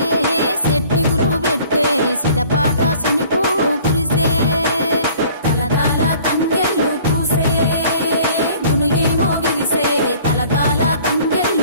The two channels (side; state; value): both; inverted; correlation -0.52